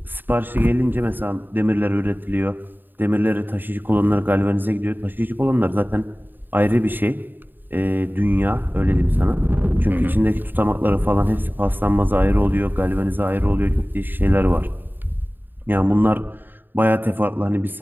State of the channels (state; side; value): late; left; 0.092 ms